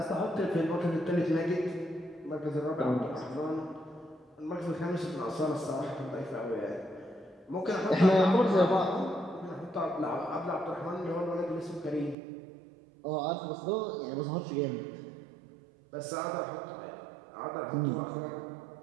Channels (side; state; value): left; drops out; at 12.2 s